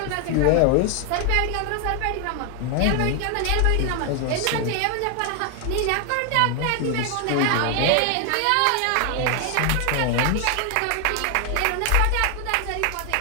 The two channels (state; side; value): different; both; correlation 0.00